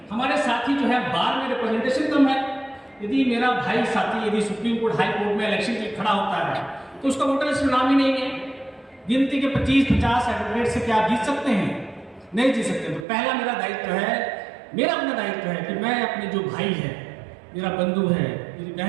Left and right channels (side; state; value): left; drops out; at 13.1 s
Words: हमारे साथी जो है बार में रिप्रेजेंटेशन कम है। यदि मेरा भाई साथी यदि सुप्रीम कोर्ट हाई कोर्ट में इलेक्शन के लिए खड़ा होता है तो उसका वोटर लिस्ट में नाम ही नहीं है। गिनती के 25-50 एडवोकेट से क्या आप जीत सकते हैं? नहीं जीत सकते। तो पहला मेरा दायित्व है, मेरा अपना दायित्व है कि मैं अपने जो भाई है, मेरा बंधु है, मेरी